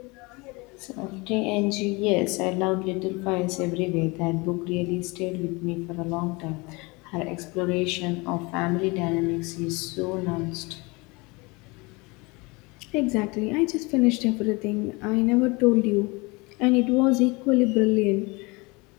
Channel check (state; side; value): quieter; right; 26.2 dB